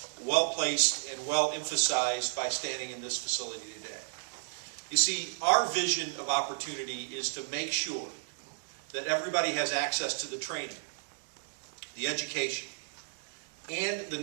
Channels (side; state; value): left; silent; digital silence